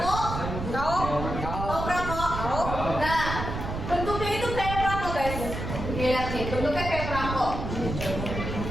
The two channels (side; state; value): right; noise; rumble, 5 dB below the sound